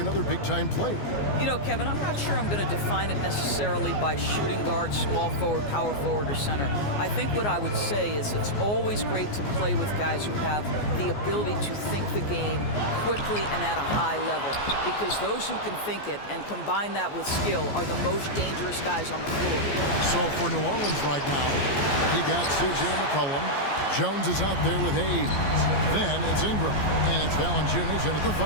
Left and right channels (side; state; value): right; late; 14 ms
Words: big-time player? You know, Kevin, I'm not sure I'm going to define it necessarily by shooting guard, small forward, power forward, or center. I think what I would say is it's always great to play with guys who have the ability to think the game quickly and at a high level, because those who can think it and combine that with skill are the most dangerous guys on the floor. So for New Orleans right now, you got C.J. McCollum. Jones is out there with Hayes. Then it's Ingram, and it's Valanciunas in at the